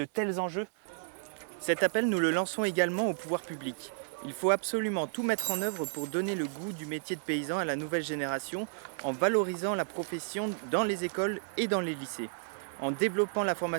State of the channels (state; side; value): silent; left; 56 dB below the other